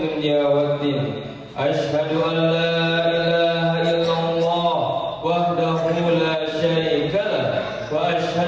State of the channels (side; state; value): both; identical; correlation 1.00